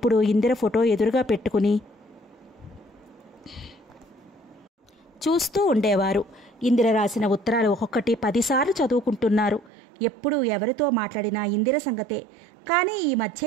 ఇందిర ఫోటో ఎదురుగా పెట్టుకుని చూస్తూ ఉండేవారు. ఇందిర రాసిన ఉత్తరాలు ఒక్కొక్కటి 10 సార్లు చదువుకుంటున్నారు. ఎప్పుడు ఎవరితో మాట్లాడినా ఇందిర సంగతే. కానీ ఈ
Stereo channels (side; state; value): left; drops out; at 9.7 s